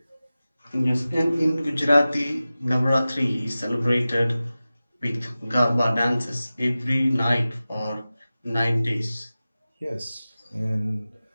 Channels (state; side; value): inverted; both; correlation -0.96